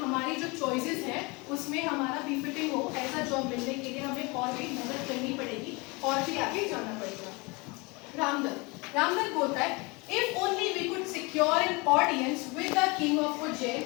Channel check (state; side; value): quieter; right; 27.1 dB